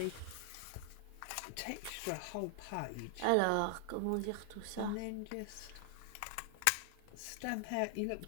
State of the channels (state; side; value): different; both; correlation 0.00